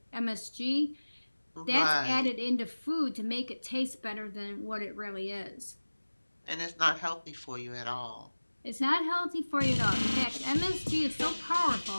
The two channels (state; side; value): inverted; both; correlation -1.00